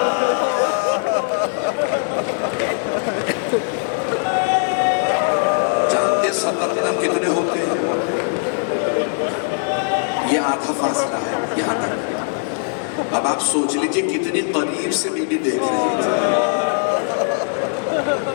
جانتے 70 قدم کتنے ہوتے ہیں؟ یہ آدھا فاصلہ ہے یہاں تک۔ اب آپ سوچ لیجئے کتنی قریب سے بی بی دیکھ رہی تھی،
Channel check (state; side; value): silent; right; digital silence